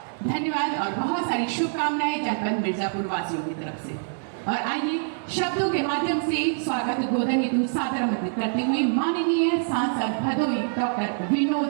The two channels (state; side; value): silent; left; 62 dB below the other